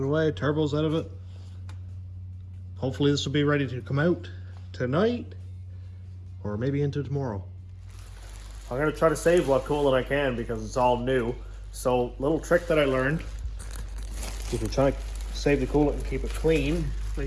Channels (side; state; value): both; identical; correlation 1.00